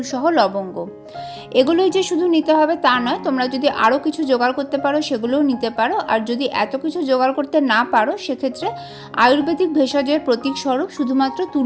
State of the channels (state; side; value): identical; both; correlation 1.00